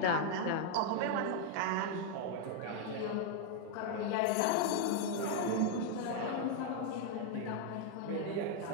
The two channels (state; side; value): different; both; correlation 0.00